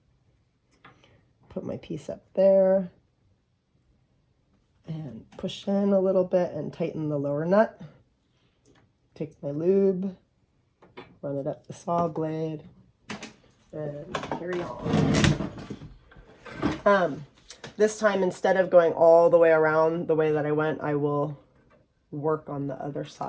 put my piece up there, and push in a little bit and tighten the lower nut. Take my lube, run it up the saw blade, and carry on. This time, instead of going all the way around the way that I went, I will work on the other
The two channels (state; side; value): identical; both; correlation 1.00